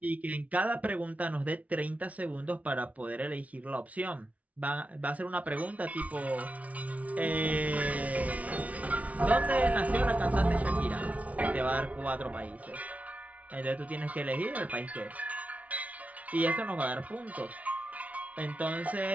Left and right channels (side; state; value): left; late; 0.068 ms